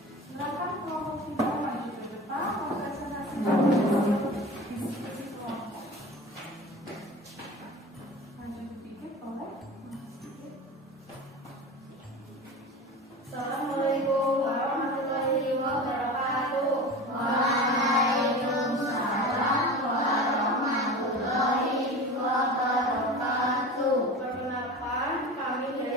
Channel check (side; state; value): both; normal; correlation 0.32